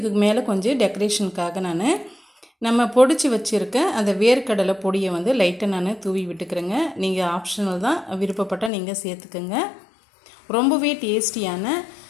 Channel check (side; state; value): right; drops out; at 8.7 s